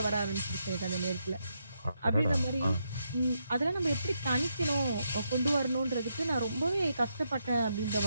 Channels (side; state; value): both; inverted; correlation -0.81